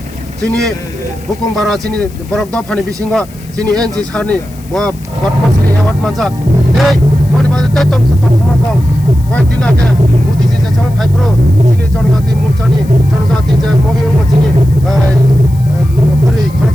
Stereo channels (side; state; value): left; noise; hiss, 24 dB below the sound